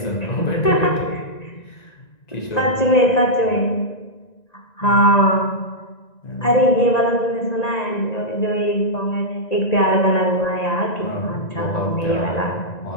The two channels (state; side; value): late; right; 1.9 ms